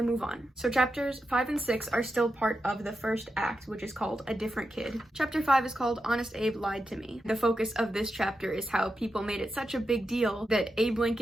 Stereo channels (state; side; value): normal; both; correlation 0.88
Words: move on. So chapters 5 and 6 are still part of the first act, which is called A Different Kid. Chapter 5 is called Honest Abe Lied to Me. The focus of this chapter is how people made it such a big deal that Abe